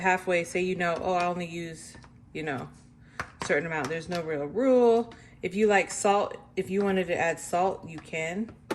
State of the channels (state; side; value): identical; both; correlation 1.00